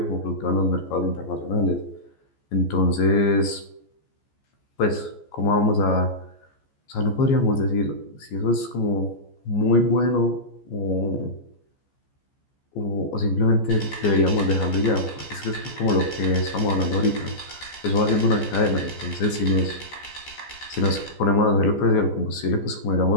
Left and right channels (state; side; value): late; right; 14 ms